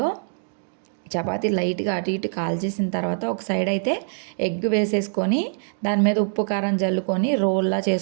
చపాతీ లైట్గా అటు ఇటు కాల్చేసిన తర్వాత ఒక సైడ్ అయితే ఎగ్ వేసేసుకొని దాని మీద ఉప్పు కారం జల్లుకొని రోల్లా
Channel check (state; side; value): silent; left; digital silence